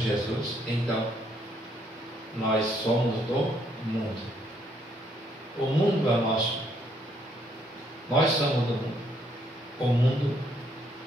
então nós somos do mundo. O mundo é nosso. Nós somos do mundo. O mundo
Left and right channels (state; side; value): normal; both; correlation 0.70